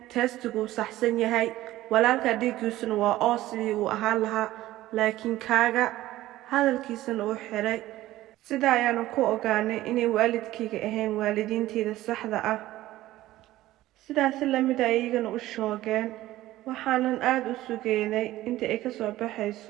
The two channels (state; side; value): quieter; left; 15.7 dB